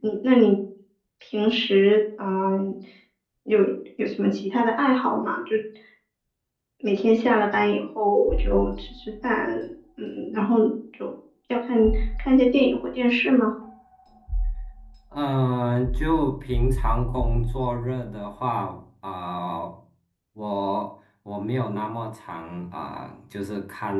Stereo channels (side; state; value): both; identical; correlation 1.00